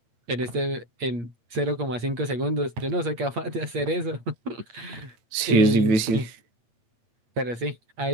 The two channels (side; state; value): left; late; 9.0 ms